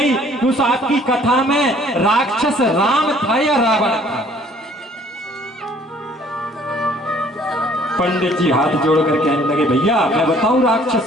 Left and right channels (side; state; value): both; normal; correlation 0.58